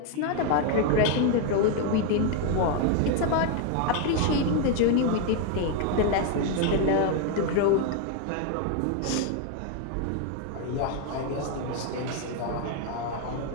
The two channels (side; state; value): both; different; correlation 0.01